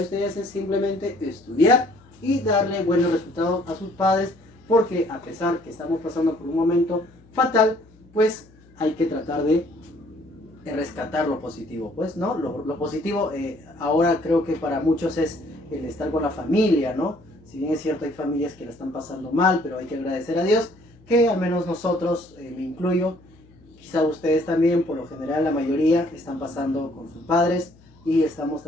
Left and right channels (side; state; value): left; noise; hum, 27 dB below the sound